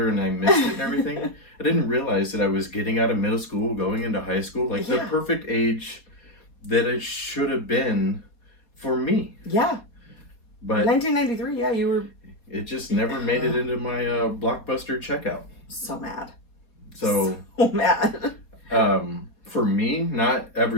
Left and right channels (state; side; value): late; right; 4.1 ms